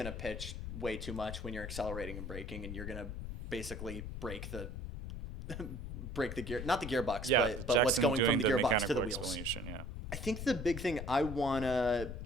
pitch way too much when you're accelerating and braking, and you're gonna basically break the gear, not the gearbox, Yeah, but what's Jackson going doing from the gearbox to mechanical the wheels. explanation, yeah. I think the big thing I wanna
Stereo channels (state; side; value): noise; left; rumble, 7 dB below the sound